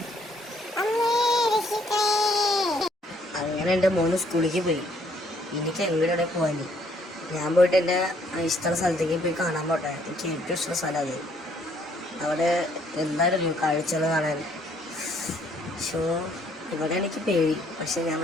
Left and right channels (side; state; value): both; normal; correlation 0.66